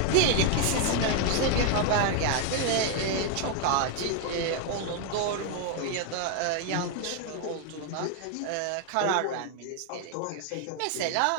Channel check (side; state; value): both; different; correlation 0.00